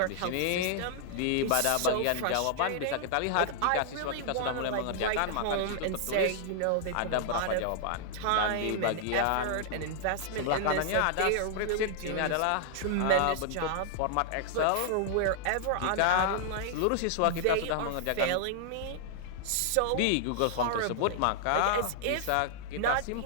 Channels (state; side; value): different; both; correlation -0.01